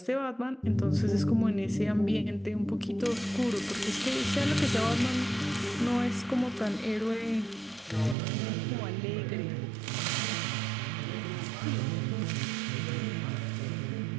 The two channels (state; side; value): drops out; left; at 8.2 s